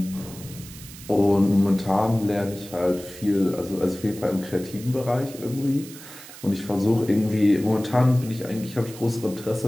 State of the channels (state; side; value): noise; right; hiss, 16 dB below the sound